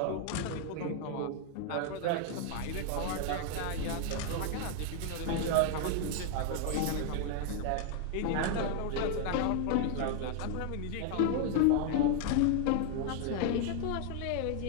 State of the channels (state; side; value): different; both; correlation 0.00